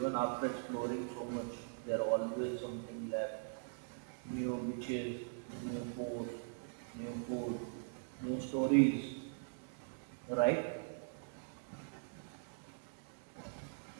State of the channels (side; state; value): left; silent; digital silence